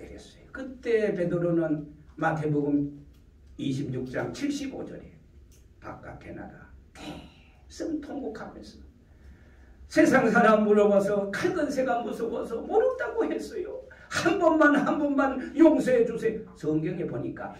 그때 베드로는 마태복음 26장 75절에 바깥에 나가 대승 통곡하면서 세상 사람 물어봐서 칼건새가 무서워서 모른다고 했어요. 한 번만 용서해 주세요. 성경에 보니까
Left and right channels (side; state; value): both; identical; correlation 1.00